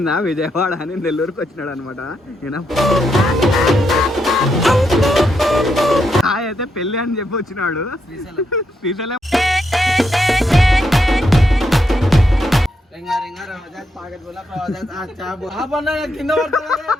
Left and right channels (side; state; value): both; normal; correlation 0.80